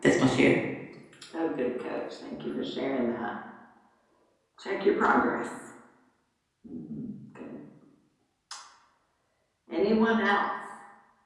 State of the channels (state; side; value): identical; both; correlation 1.00